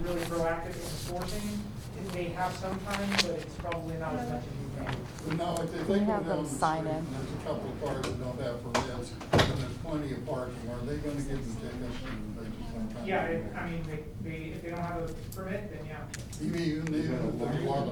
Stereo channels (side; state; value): both; identical; correlation 1.00